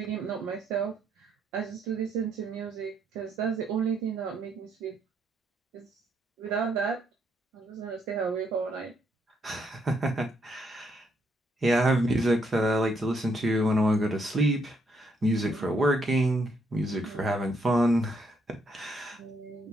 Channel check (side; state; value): both; normal; correlation 0.74